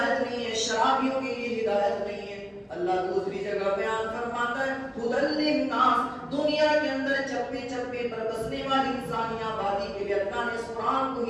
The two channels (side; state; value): both; identical; correlation 1.00